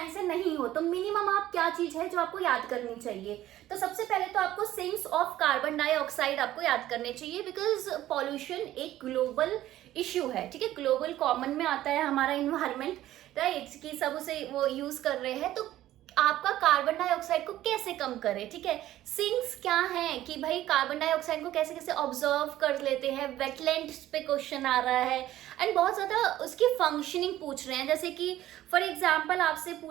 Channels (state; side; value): quieter; left; 13.9 dB